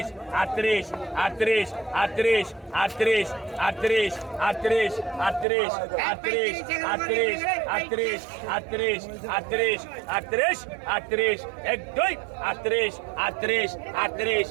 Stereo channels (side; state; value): left; drops out; at 5.5 s